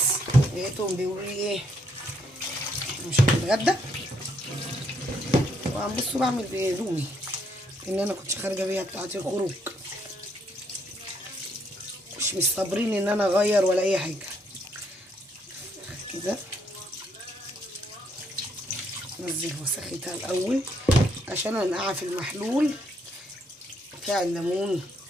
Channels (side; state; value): both; normal; correlation 0.73